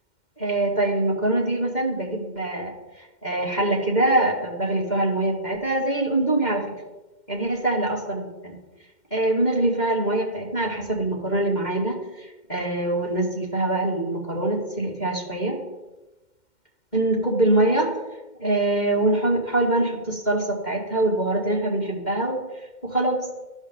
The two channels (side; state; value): right; late; 2.1 ms